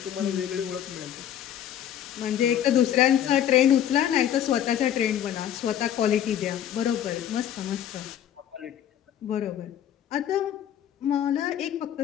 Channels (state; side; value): quieter; right; 10.5 dB